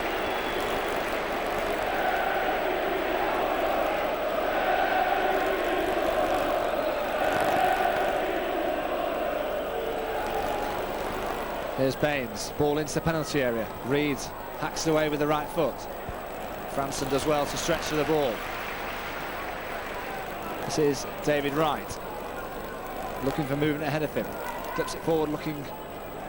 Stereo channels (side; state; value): both; identical; correlation 1.00